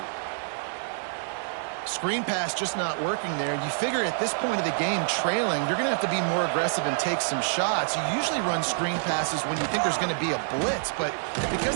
Screen pass just not working there. You figure at this point of the game, trailing, you're going to have to be more aggressive and take some shots. You usually run screen passes when you think there's going to be a blitz, but because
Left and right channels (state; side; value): silent; left; digital silence